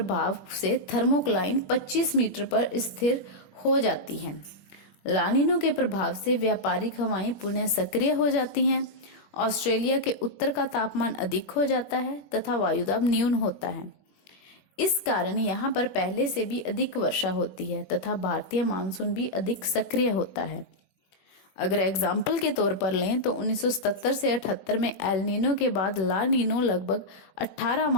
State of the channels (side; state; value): right; late; 21 ms